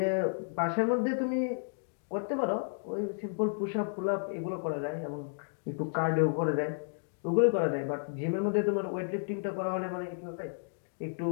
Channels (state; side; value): silent; right; digital silence